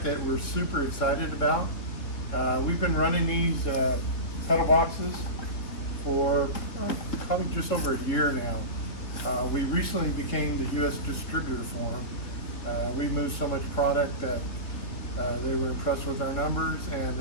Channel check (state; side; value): late; right; 3.4 ms